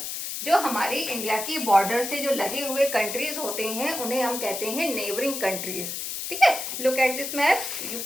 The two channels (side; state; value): left; noise; hiss, 5 dB below the sound